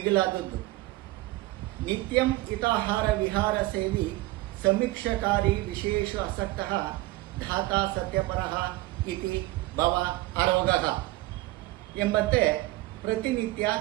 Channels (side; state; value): left; quieter; 19.0 dB